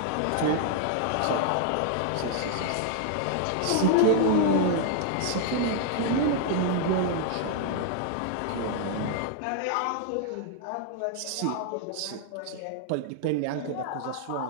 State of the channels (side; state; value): both; different; correlation -0.01